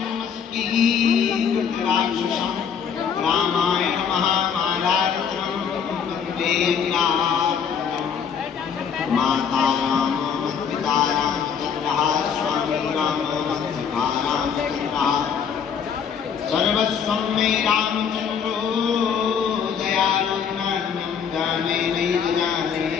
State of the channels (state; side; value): quieter; right; 7.2 dB